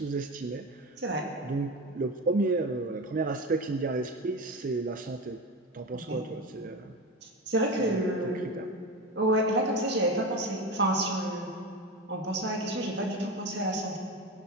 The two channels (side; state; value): both; normal; correlation 0.23